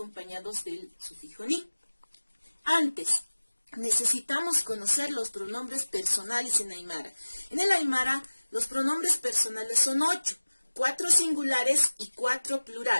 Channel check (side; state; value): both; inverted; correlation -1.00